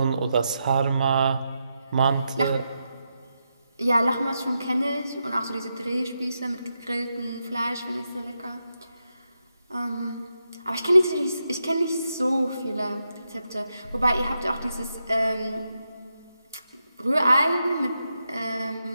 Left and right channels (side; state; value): both; inverted; correlation -0.86